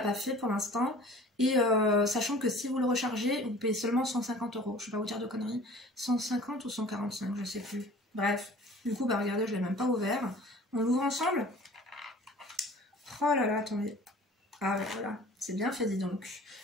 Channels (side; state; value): both; normal; correlation 0.46